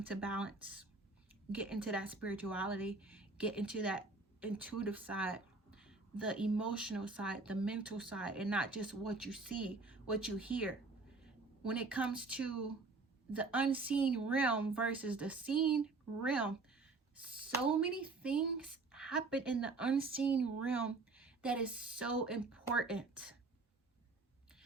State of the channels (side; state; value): left; quieter; 3.7 dB